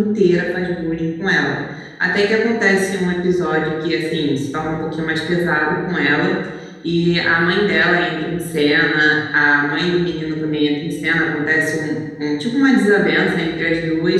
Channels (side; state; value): both; identical; correlation 1.00